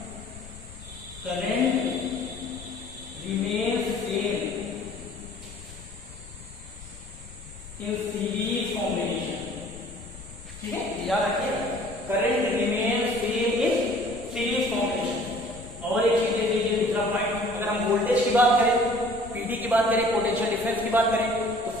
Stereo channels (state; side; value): noise; left; rumble, 16 dB below the sound